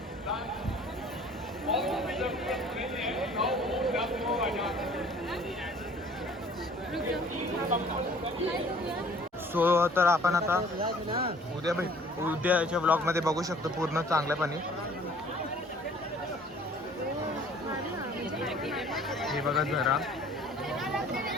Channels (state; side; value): normal; both; correlation 0.53